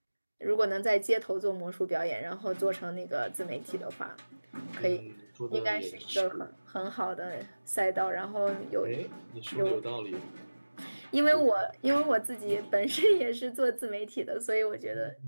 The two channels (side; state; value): both; inverted; correlation -1.00